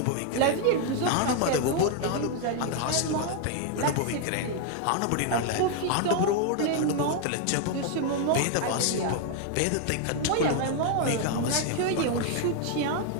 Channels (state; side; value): different; both; correlation 0.00